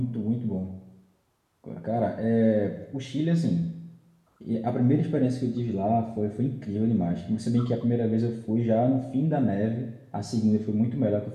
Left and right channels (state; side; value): identical; both; correlation 1.00